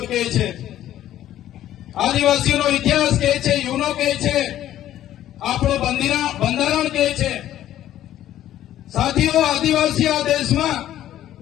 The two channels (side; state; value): right; quieter; 12.5 dB